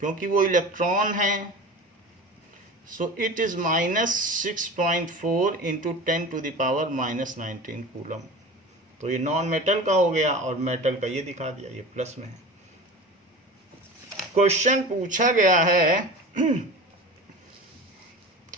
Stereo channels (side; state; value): both; normal; correlation 0.34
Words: क्योंकि वो इलेक्ट्रॉन है। So it is -6.4 into 10 to the power -19 coulomb. तो ये नॉन मेटल का हो गया और मेटल का ये दिखा दिया, ये प्लस में है। क्वेश्चन पूछा गया है,